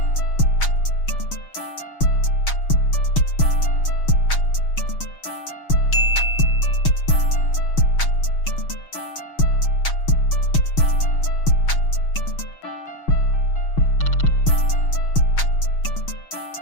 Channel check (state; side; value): late; right; 6.3 ms